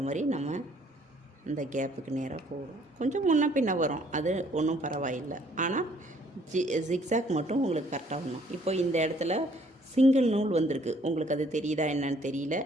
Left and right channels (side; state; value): both; normal; correlation 0.62